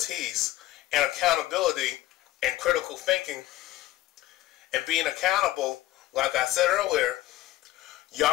and accountability and critical thinking and being accountable, like I said earlier,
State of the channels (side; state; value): right; quieter; 16.2 dB